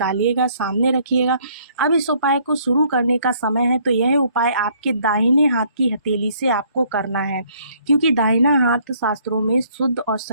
सामने रखिएगा। अब इस उपाय को शुरू करने का समय है, तो यह उपाय आपके दाहिने हाथ की हथेली से आपको करना है, क्योंकि दाहिना हाथ शास्त्रों में शुद्ध और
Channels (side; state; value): both; inverted; correlation -0.63